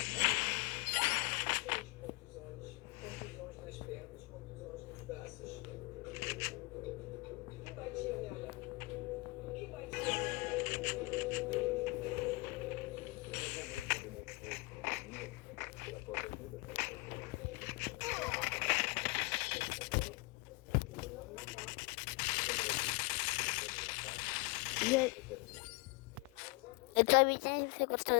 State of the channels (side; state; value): right; quieter; 25.3 dB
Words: Contusões nas pernas, contusões nos braços. Quem batia nela? Quem batia nela? Eu tô avisando se você gostou